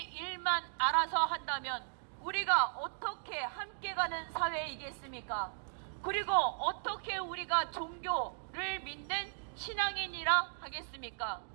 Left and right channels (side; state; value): left; silent; digital silence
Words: 일만 알아서 한다면 우리가 어떻게 함께 가는 사회이겠습니까? 그리고 어떻게 우리가 종교를 믿는 신앙인이라 하겠습니까?